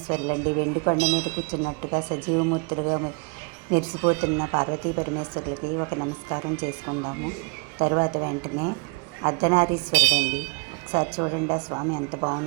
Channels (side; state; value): left; quieter; 32.1 dB